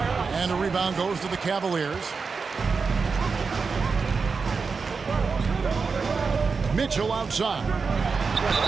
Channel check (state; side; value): quieter; left; 4.9 dB